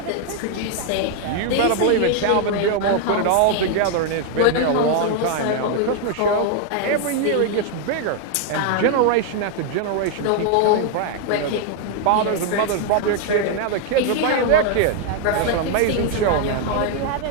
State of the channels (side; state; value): both; different; correlation 0.00